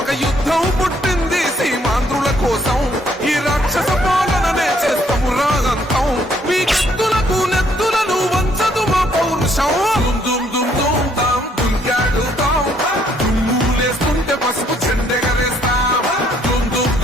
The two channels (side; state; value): both; normal; correlation 0.67